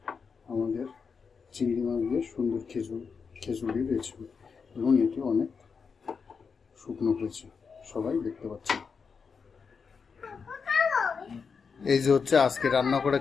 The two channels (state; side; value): quieter; right; 5.6 dB